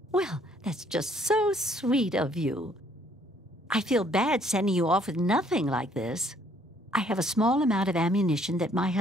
Well, that's just so sweet of you. I feel bad sending you off with nothing like this. I have a small amount of ammunition that my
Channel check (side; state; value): both; normal; correlation 0.64